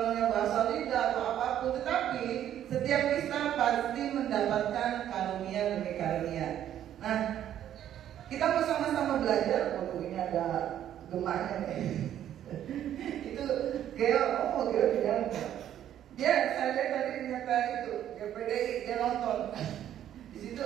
bahasa lidah atau apapun, tetapi setiap kita pasti mendapatkan karunia demi karunia. Nah, kita mau sama-sama belajar. Oh, ini ada gemaknya nih. Itu Geo bilang dia, saya lihat tadi ternyata itu PDI dia nonton di situ.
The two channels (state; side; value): quieter; left; 11.0 dB